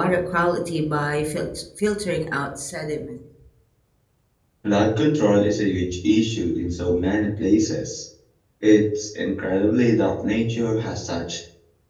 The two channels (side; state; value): both; identical; correlation 1.00